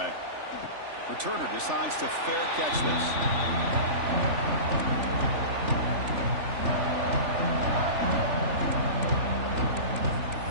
Returner decides to fair catch this.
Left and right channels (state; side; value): late; left; 3.4 ms